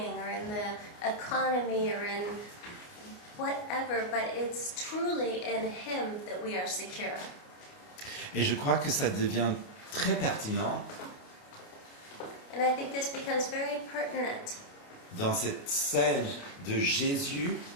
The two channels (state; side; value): late; right; 29 ms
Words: or in the economy or in whatever, but it's truly in Him that we are secure. Et je crois que ça devient très pertinent And I think this becomes very pertinent dans cette scène de Jésus